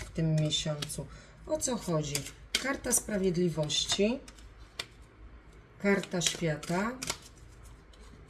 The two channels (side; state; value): both; identical; correlation 1.00